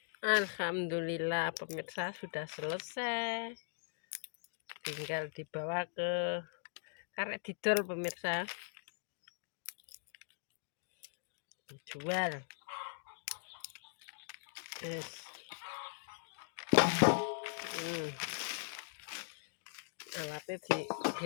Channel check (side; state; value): right; silent; digital silence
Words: Alhamdulillah pemirsa sudah selesai. Tinggal dibawa ke karek didol pemirsa. Dijual. Yes. Alatnya